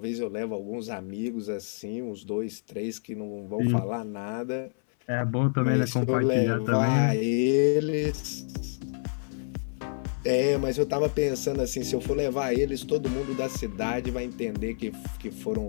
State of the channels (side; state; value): right; silent; 59 dB below the other